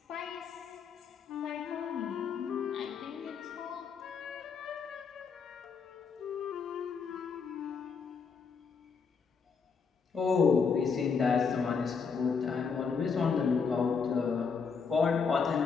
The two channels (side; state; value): right; quieter; 5.6 dB